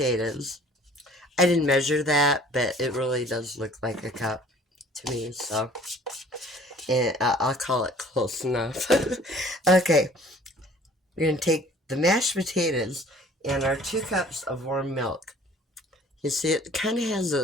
I didn't measure that, but it really does look like a cup to me. So, and I'll call it close enough. Okay, we're going to take the mashed potatoes and our 2 cups of warm milk. You see, it kind of has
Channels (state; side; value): normal; both; correlation 0.52